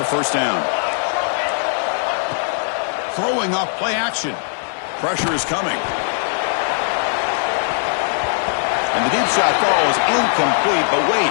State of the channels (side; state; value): right; silent; 66 dB below the other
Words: first down. Throwing off play action. Pressure is coming. And the deep shot falls incomplete, but wait,